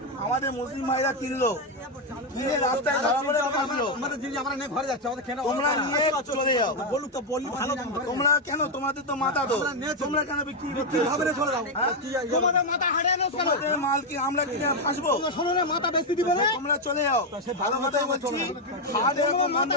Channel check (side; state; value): both; normal; correlation 0.04